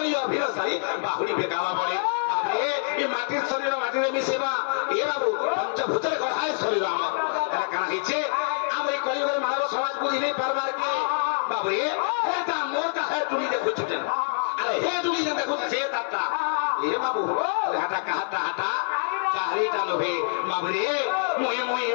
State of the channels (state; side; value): silent; right; 61 dB below the other